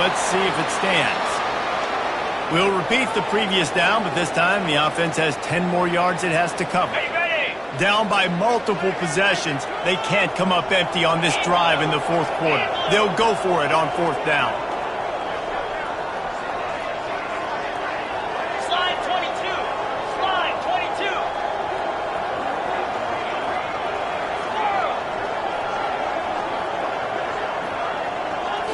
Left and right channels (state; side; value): identical; both; correlation 1.00